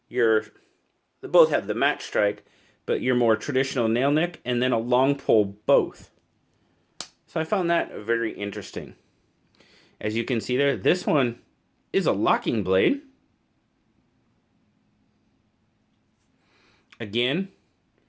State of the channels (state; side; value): identical; both; correlation 1.00